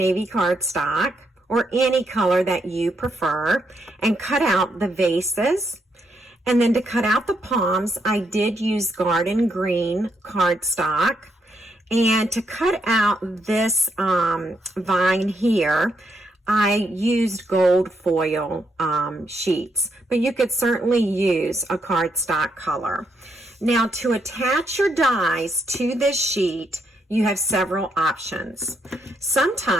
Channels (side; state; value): both; normal; correlation 0.77